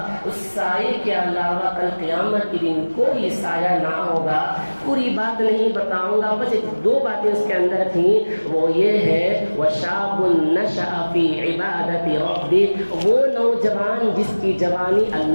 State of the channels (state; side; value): inverted; both; correlation -1.00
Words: اس سائے کے علاوہ کل قیامت کے دن کوئی سایہ نہ ہوگا۔ پوری بات نہیں بتاؤں گا، بس 2 باتیں اس کے اندر تھیں، وہ یہ ہے وَشَابٌ نَشَأَ فِي عِبَادَةِ رَبِّهِ، وہ نوجوان جس کی جوانی